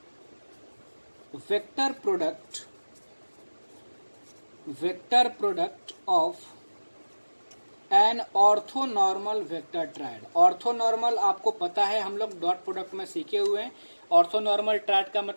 vector product of N orthonormal vector triad. Orthonormal आपको पता है, हम लोग डॉट प्रोडक्ट में सीखे हुए हैं। ऑर्थोनॉर्मल ट्रायड का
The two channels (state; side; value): inverted; both; correlation -1.00